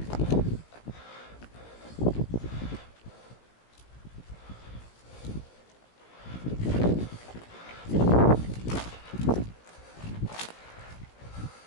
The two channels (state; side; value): late; right; 17 ms